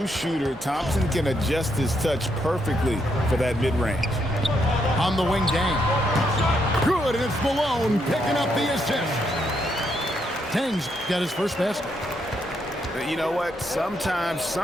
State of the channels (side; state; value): both; normal; correlation 0.77